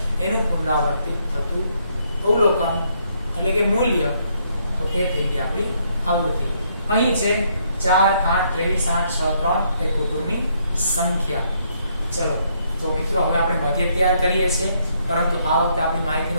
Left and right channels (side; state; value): both; inverted; correlation -0.71